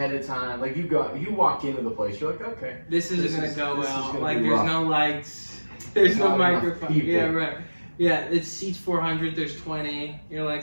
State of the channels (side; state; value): both; inverted; correlation -1.00